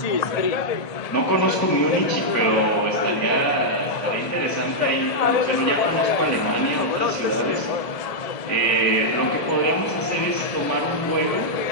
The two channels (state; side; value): late; right; 1.7 ms